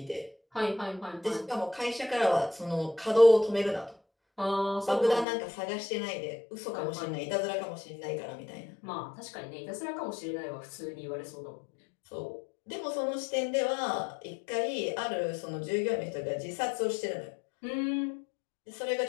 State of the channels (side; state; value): right; drops out; at 5.2 s